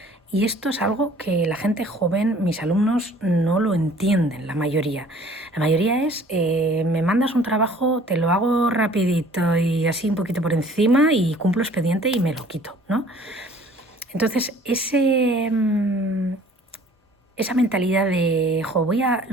Y esto es algo que la gente joven, mis alumnos, no lo entienden, la mayoría. La mayoría es, me mandas un trabajo, te lo hago rapidito y así un poquito por encima y cumplo expediente y me lo quito, ¿no? Entonces, esa mentalidad de,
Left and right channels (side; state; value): both; normal; correlation 0.52